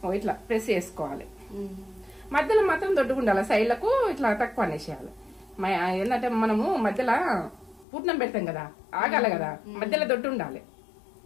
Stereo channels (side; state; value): right; drops out; at 7.9 s